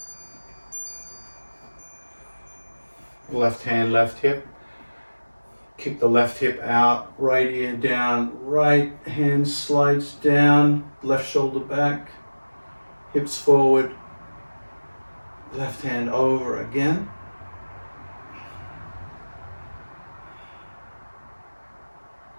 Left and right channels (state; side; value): inverted; both; correlation -1.00